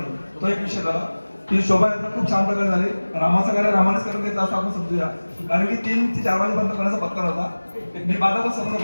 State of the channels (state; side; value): inverted; both; correlation -1.00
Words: तो एक विषय झाला. ती शोभायात्रा खूप छान प्रकारे झाली. रामाचं कार्य रामानेच करून घेतलं असं आपण समजूया, कारण की 3 ते 4 वाजेपर्यंत करण्याचा पत्ता होता. मी 12 वाजता